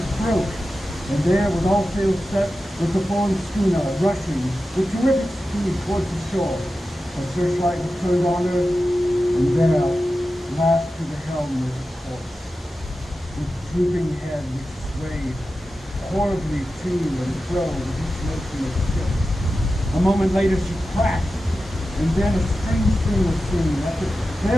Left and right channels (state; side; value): normal; both; correlation 0.93